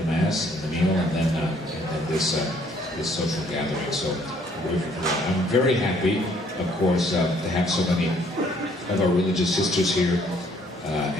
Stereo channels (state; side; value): normal; both; correlation 0.63